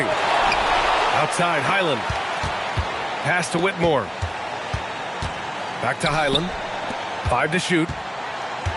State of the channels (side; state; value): both; identical; correlation 1.00